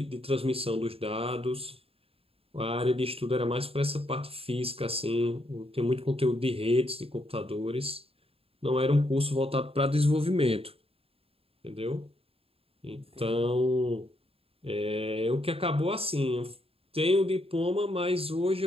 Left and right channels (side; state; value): left; late; 0.28 ms